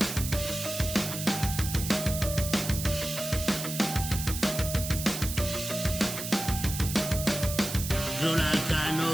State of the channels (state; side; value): noise; right; hiss, 6 dB below the sound